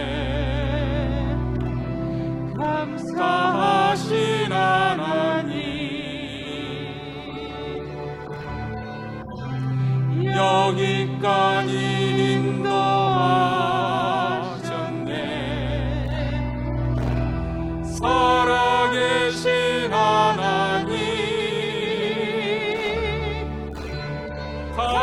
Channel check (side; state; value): both; identical; correlation 1.00